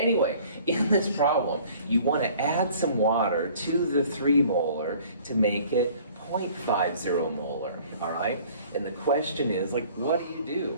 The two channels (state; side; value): inverted; both; correlation -0.52